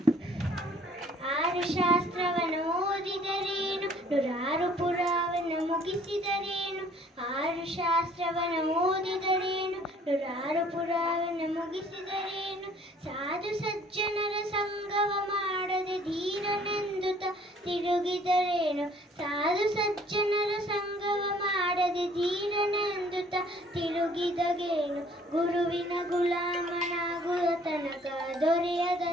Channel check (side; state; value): both; normal; correlation 0.58